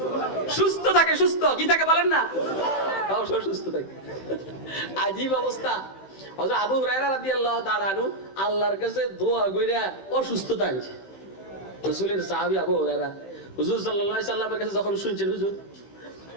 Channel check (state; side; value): late; right; 15 ms